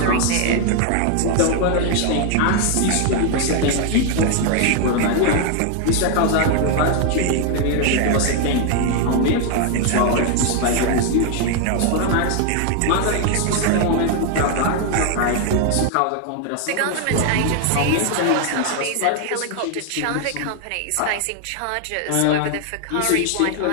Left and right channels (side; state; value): both; different; correlation 0.00